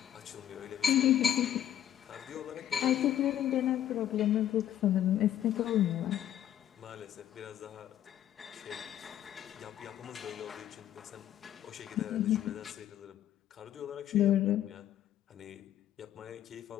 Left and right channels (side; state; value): right; quieter; 11.2 dB